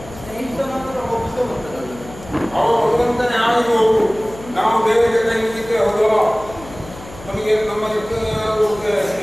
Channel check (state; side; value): noise; left; hum, 17 dB below the sound